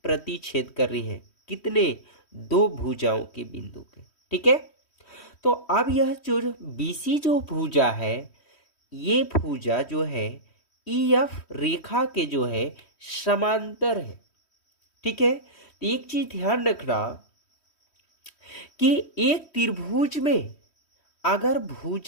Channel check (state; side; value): late; right; 3.1 ms